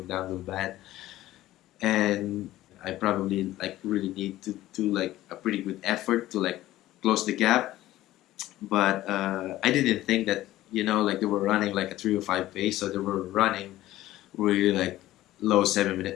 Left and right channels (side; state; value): right; quieter; 15.3 dB